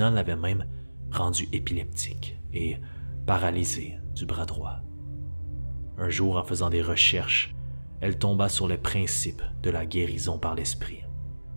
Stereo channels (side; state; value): both; inverted; correlation -1.00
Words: l'avait même rendue épileptique et paralysée du bras droit. Un jour, en faisant des recherches, elle tomba sur le principe de la guérison par l'esprit